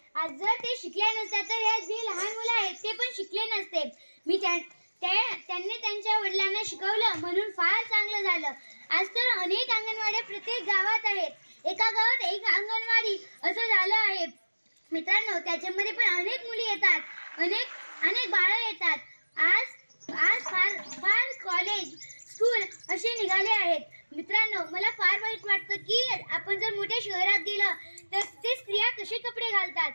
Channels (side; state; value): both; inverted; correlation -1.00